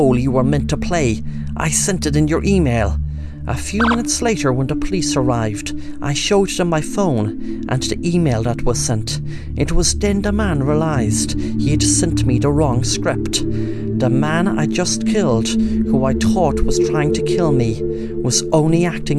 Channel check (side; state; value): both; identical; correlation 1.00